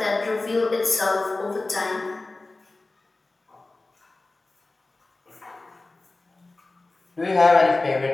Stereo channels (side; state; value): right; quieter; 3.2 dB